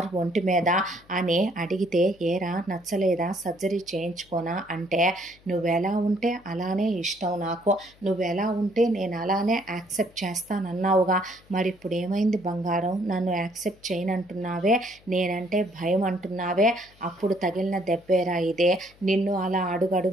ఒంటి మీద, నచ్చలేదా అని అడిగితే, ఏరా నచ్చలేదా, సర్జరీ చేయించుకోనా అంటే, నువ్వెలా ఉంటే అలానే ఇష్టం నాకు, నువ్వెలా ఉంటే నేను అలానే యాక్సెప్ట్ చేస్తానన్నావుగా, మరి ఇప్పుడు ఏమైంది బంగారం, నన్ను యాక్సెప్ట్ చేయనంటున్నావే, నేనంటే భయం అంటున్నావే, అప్పుడు తగిలిన దెబ్బేరా ఇదే, నిన్ను అలా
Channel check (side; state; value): left; noise; hum, 28 dB below the sound